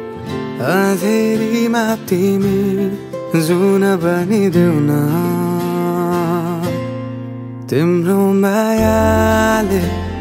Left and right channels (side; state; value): both; identical; correlation 1.00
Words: अँधेरीमा तिमी जुन बनिदेऊ न तिम्रो मायाले